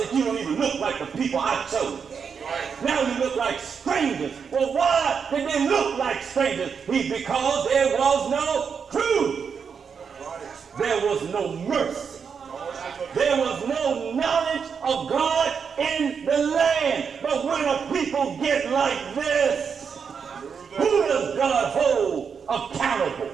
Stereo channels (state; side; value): quieter; left; 6.4 dB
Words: you don't even look like the people I chose. Now you look like strangers. Well, why did they look like strangers? Because there was no truth. There was no mercy. There was no knowledge of God in the land. But when a people get like this, who does God hold accountable?